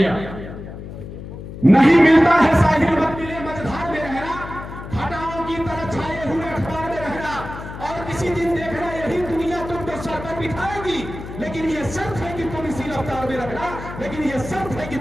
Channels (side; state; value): left; noise; hum, 11 dB below the sound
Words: नहीं मिलता है साहिल मत मिले मझधार में रहना, घटाओं की तरह छाए हुए अखबार में रहना, और किसी दिन देखना यही दुनिया तुमको सर पर बिठाएगी, लेकिन ये शर्त है कि तुम इसी रफ्तार में रहना, लेकिन ये शर्त है कि